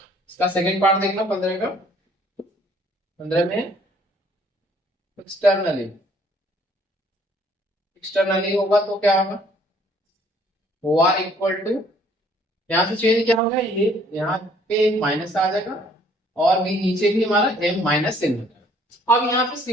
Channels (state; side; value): normal; both; correlation 0.60